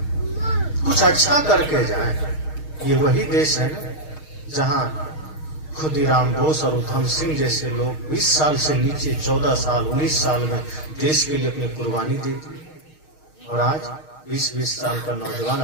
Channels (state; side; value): late; right; 6.4 ms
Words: कुछ अच्छा करके जाए। ये वही देश है ना जहां खुदीराम बोस और उधम सिंह जैसे लोग 20 साल से नीचे 14 साल 19 साल में देश के लिए अपनी कुर्बानी दी थी, और आज 20-20 साल का नौजवान